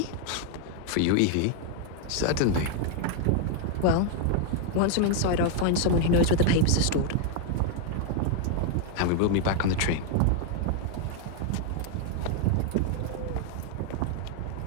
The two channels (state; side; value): different; both; correlation 0.00